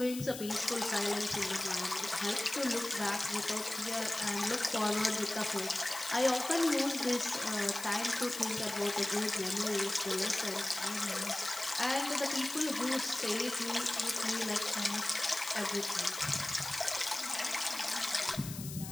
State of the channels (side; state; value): left; noise; hiss, 10 dB below the sound